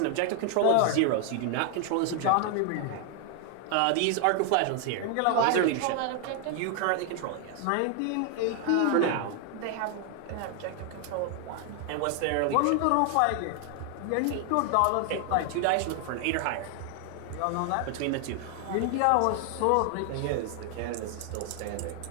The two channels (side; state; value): both; different; correlation 0.00